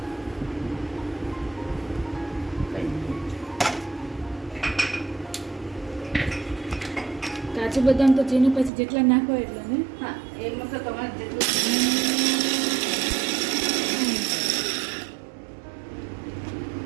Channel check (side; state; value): left; drops out; at 8.7 s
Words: કાજુ બદામ તો ચીની પછી જેટલા નાખો એટલા ને? હા, એમાં તો તમારે જેટલું